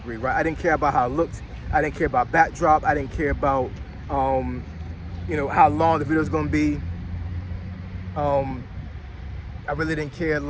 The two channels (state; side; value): identical; both; correlation 1.00